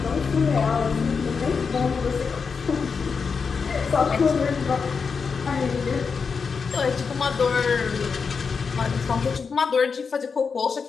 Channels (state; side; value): quieter; right; 5.5 dB